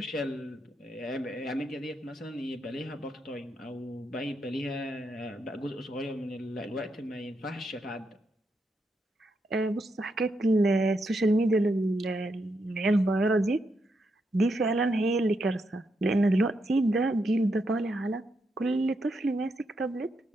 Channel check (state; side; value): normal; both; correlation 0.81